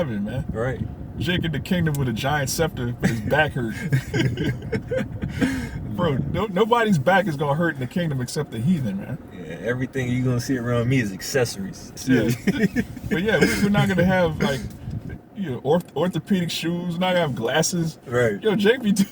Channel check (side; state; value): both; identical; correlation 1.00